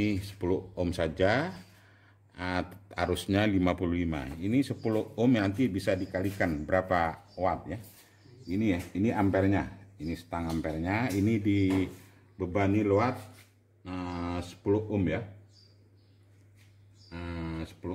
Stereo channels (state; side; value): identical; both; correlation 1.00